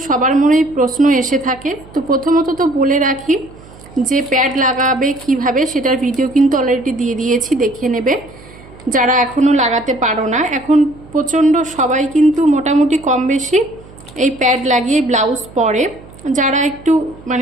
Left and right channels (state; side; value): noise; right; hum, 21 dB below the sound